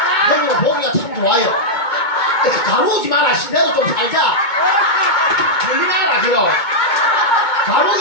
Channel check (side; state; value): right; late; 2.2 ms